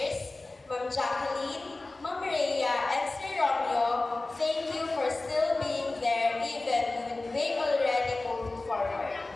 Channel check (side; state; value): right; quieter; 3.1 dB